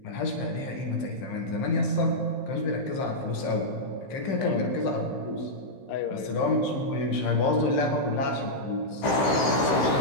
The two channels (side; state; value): right; late; 15 ms